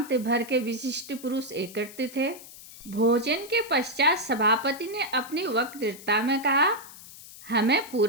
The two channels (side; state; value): left; noise; hiss, 17 dB below the sound